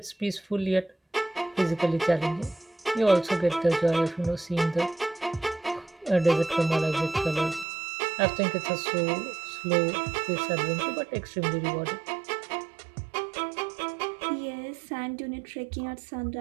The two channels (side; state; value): left; drops out; at 7.7 s